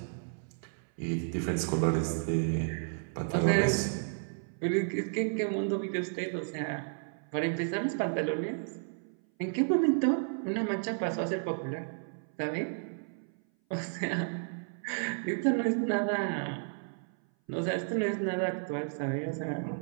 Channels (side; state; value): left; silent; 56 dB below the other